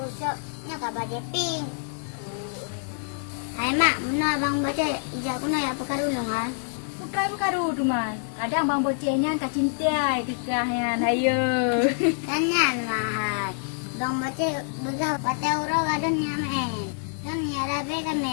nya kau baca pink. Hai mak, mana abang baca hijau kuna ya pekarulung kan? Bukan tu man. Kadang bang bocehnya kak cintai tikahnya. Hayo. Tanya mahal. Bang baca begah patah urang ada nyamen. Dan nyarabe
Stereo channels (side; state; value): right; silent; 56 dB below the other